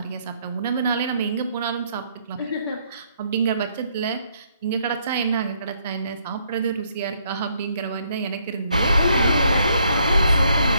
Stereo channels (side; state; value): both; inverted; correlation -0.70